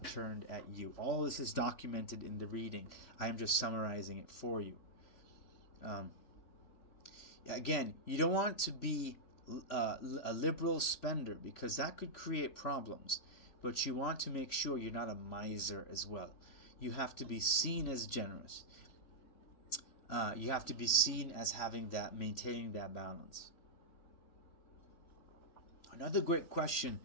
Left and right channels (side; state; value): right; late; 3.6 ms